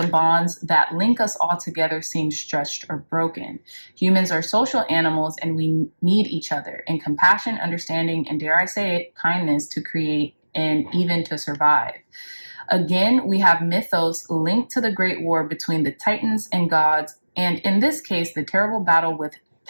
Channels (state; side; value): inverted; both; correlation -1.00